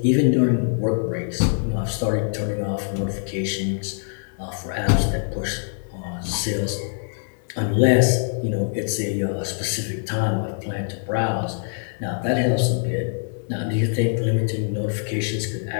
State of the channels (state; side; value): silent; right; 63 dB below the other